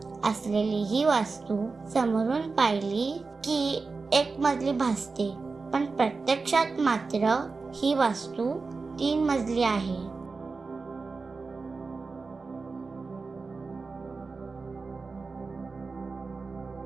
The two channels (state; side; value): quieter; left; 4.2 dB